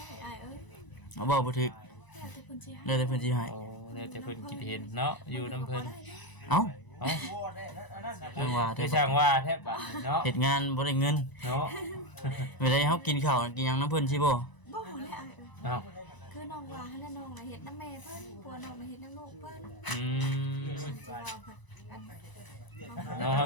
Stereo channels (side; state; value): right; late; 1.0 ms